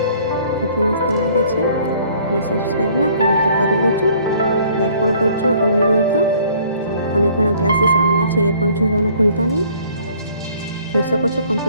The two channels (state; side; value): inverted; both; correlation -0.57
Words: કેટલી મસ્ત લાગે છે. અને સબસ્ક્રાઈબ ના કરે તો કરી લેજો, લાઈક પણ કરજો ગમ્યું હોય તો. અને ઘણા ક્લાસીસ આવવાના છે એ પણ જોવાનું ભૂલતા નહીં. જોઈ શકો છો